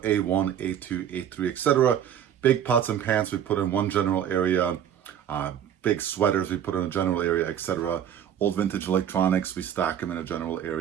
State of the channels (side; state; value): left; quieter; 9.5 dB